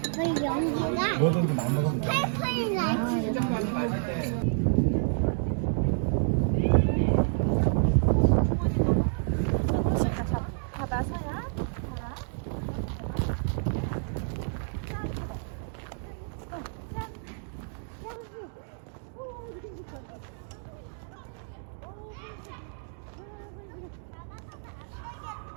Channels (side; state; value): left; silent; digital silence